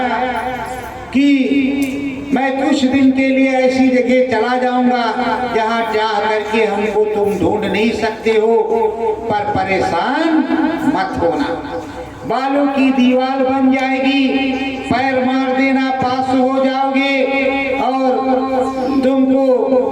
कि मैं कुछ दिन के लिए ऐसी जगह चला जाऊंगा जहां चाह करके हमको तुम ढूंढ नहीं सकते हो, पर परेशान मत होना। बालों की दीवार बन जाएगी, पैर मार देना पास हो जाओगे और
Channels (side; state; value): both; identical; correlation 1.00